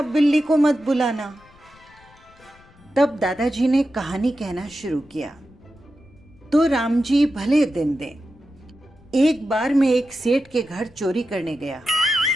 बिल्ली को मत बुलाना। तब दादाजी ने कहानी कहना शुरू किया। तो राम जी भले दिन दें, एक बार मैं एक सेठ के घर चोरी करने गया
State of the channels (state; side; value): noise; left; rumble, 28 dB below the sound